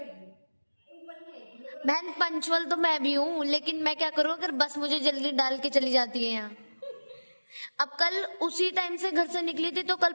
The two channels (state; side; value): inverted; both; correlation -1.00